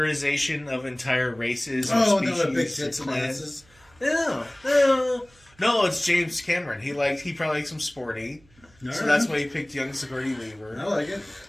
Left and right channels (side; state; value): right; noise; hum, 30 dB below the sound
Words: of entire races or Oh, species. no, the big tits and clans. asses. No, it's James Cameron. He probably likes them sporty. All So right. that's why he picked young Sigourney Weaver. I like it.